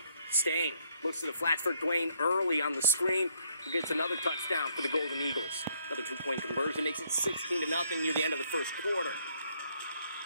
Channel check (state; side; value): inverted; both; correlation -0.69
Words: Stain looks to the flats for Dwayne Early on the screen, who gets another touchdown for the Golden Eagles. Another 2-point conversion makes it 16-0 near the end of the first quarter.